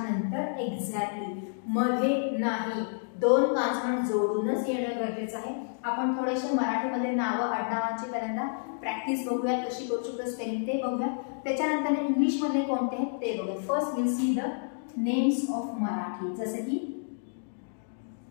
एक्झॅक्टली मध्ये नाही. 2 कॉन्सोनंट जोडूनच येणं गरजेचं आहे. आपण थोडेसे मराठीमध्ये नावं आडनावांची पहिल्यांदा प्रॅक्टिस बघूया, कशी करू शकतो स्पेलिंग ते बघूया. त्याच्यानंतर इंग्लिश मध्ये कोणते आहेत ते बघूया. First will see the names of Marathi, जसे की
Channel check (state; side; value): silent; right; digital silence